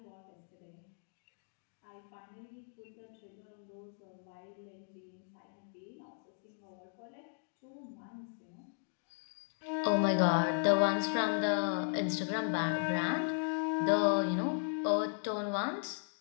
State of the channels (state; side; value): silent; right; digital silence